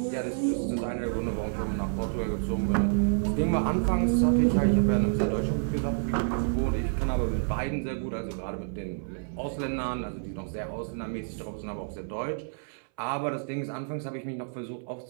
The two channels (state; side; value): silent; left; 59 dB below the other